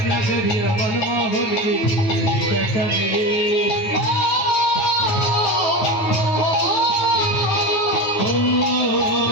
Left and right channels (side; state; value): right; late; 9.3 ms